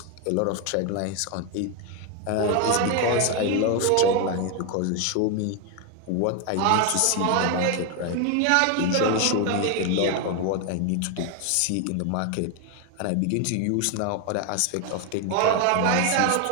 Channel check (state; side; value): different; both; correlation 0.01